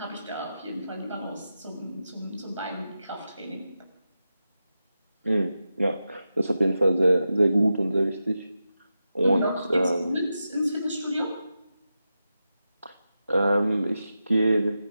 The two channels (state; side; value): inverted; both; correlation -0.90